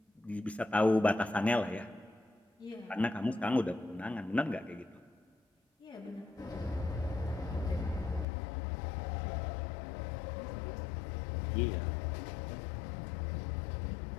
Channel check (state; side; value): drops out; right; at 8.2 s